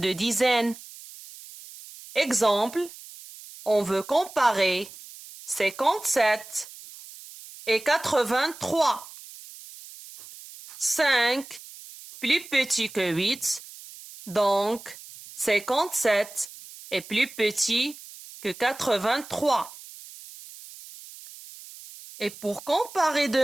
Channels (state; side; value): noise; right; hiss, 17 dB below the sound